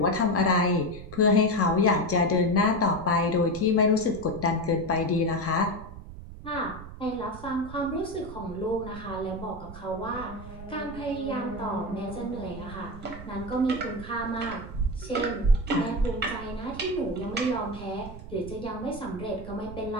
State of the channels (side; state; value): right; noise; rumble, 13 dB below the sound